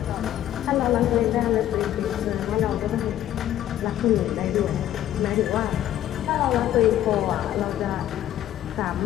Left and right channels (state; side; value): quieter; right; 12.2 dB